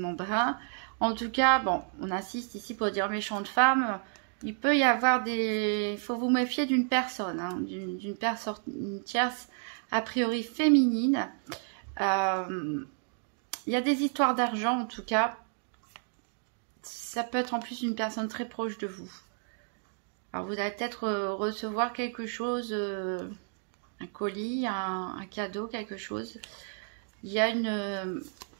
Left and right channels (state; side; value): silent; left; 57 dB below the other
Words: brun. En tout cas, bon, on insiste ici pour dire méchante femme. Il peut y avoir des... Il faut vous méfier d'une personne, hein, d'une personne tierce, a priori féminine. Il y a des histoires d'argent en tout cas. Ça peut être en plus une personne très proche de vous. Alors vous allez peut-être recevoir quelque chose, un colis, un cadeau, quelque chose. Il y a une